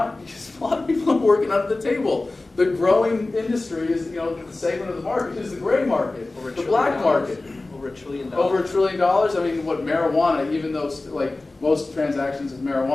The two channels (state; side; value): quieter; right; 3.1 dB